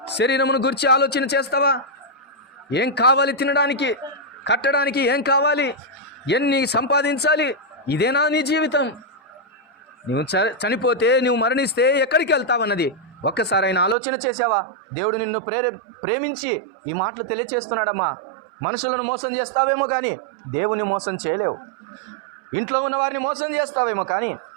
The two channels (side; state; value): left; drops out; at 14.0 s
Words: శరీరమును గురించి ఆలోచన చేస్తావా? ఏం కావాలి తినడానికి, కట్టడానికి? ఏం కావాలి? ఎన్ని సంపాదించాలి? ఇదేనా నీ జీవితం? నువ్వు చనిపోతే, నువ్వు మరణిస్తే ఎక్కడికి వెళ్తావన్నది ఒక్కసారి ఆయన ఆలోచన చేసావా? దేవుడు నిన్ను ప్రేమించి ఈ మాటలు తెలియచేస్తున్నాడమ్మా. మనుషులను మోసం చేస్తావేమో కానీ దేవుని మోసం చేయలేవు. ఇంట్లో ఉన్న వారిని మోసం చేస్తావేమో కానీ